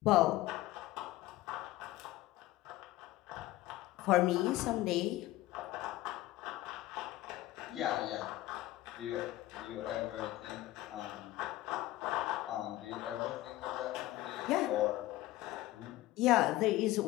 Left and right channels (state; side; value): quieter; right; 16.5 dB